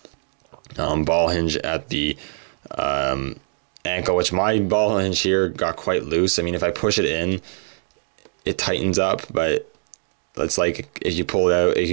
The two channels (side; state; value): left; silent; digital silence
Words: Ball hinge at the ankle, which my ball hinge here got quite loose. I mean, if I push it in, it tightens up, but it's like if you pull it out, you